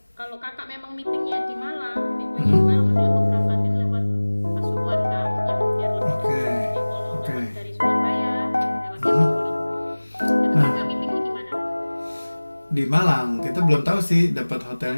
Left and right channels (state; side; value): inverted; both; correlation -1.00